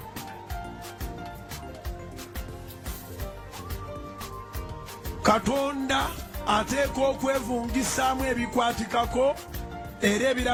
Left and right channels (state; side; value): identical; both; correlation 1.00